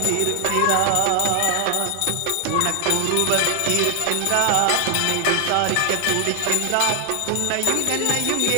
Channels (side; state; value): both; different; correlation 0.00